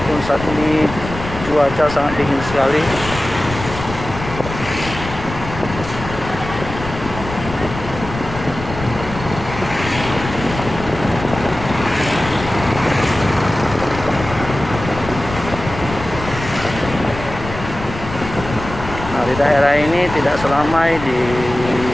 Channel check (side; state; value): left; noise; rumble, 10 dB below the sound